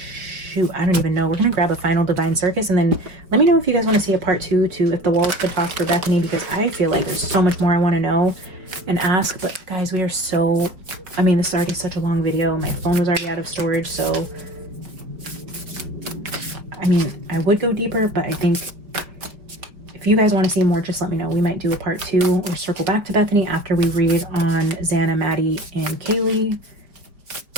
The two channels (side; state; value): left; late; 4.8 ms